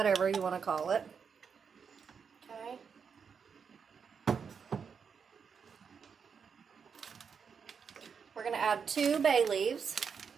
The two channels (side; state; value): left; quieter; 6.3 dB